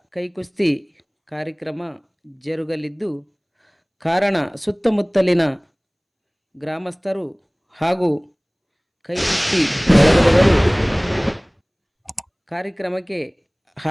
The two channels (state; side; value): identical; both; correlation 1.00